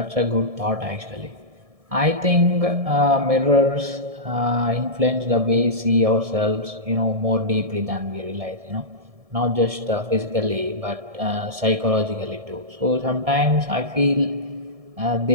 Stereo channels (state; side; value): late; left; 1.7 ms